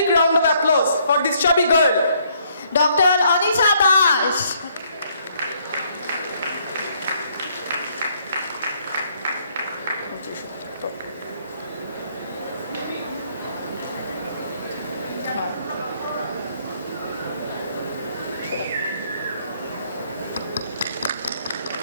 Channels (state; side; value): inverted; both; correlation -0.67